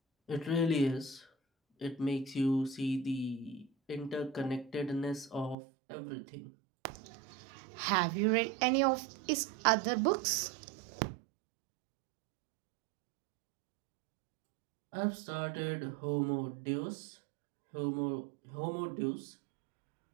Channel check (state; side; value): drops out; left; at 5.6 s